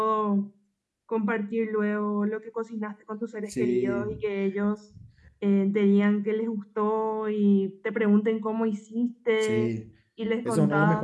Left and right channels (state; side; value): identical; both; correlation 1.00